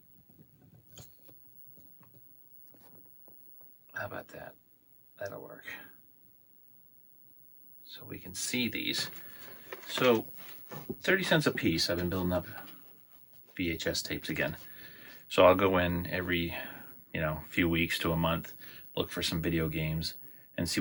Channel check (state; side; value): identical; both; correlation 1.00